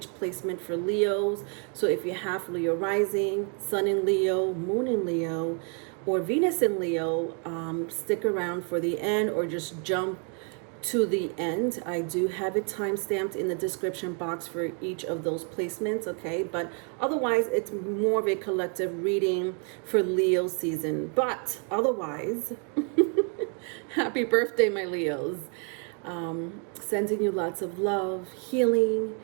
placement for Leos. So if you have Leo rising, Sun in Leo, Moon in Leo, or Venus in Leo, stick around for the end or just jump to the end. I do have it time stamped in the description box for each of those placements, okay? But otherwise, it's more of a collective reading for Leo season. But otherwise, happy birthday, my Leos. Sending you lots of love, healing,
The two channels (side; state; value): left; quieter; 39.4 dB